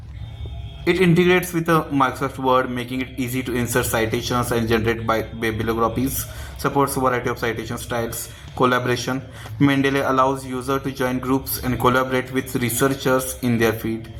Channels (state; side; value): identical; both; correlation 1.00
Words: It integrates with Microsoft Word, making it easy to insert citations and generate bibliographies. Supports a variety of citation styles. Collaboration: Mendeley allows users to join groups and collaborate with researchers in their field.